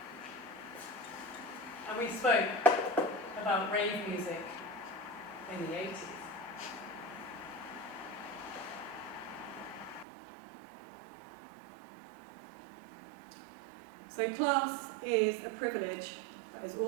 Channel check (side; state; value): left; drops out; at 10.1 s